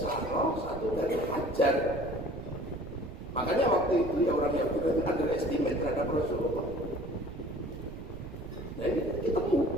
satu dari Hajar. Makanya waktu itu ya orang yang underestimate terhadap Rasulullah. Nah ini ketemu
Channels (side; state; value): right; noise; rumble, 12 dB below the sound